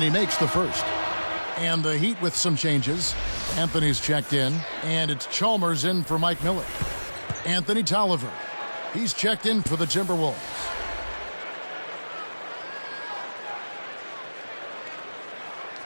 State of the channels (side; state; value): both; inverted; correlation -1.00